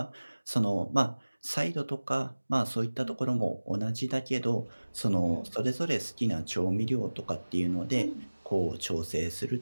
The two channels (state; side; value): inverted; both; correlation -1.00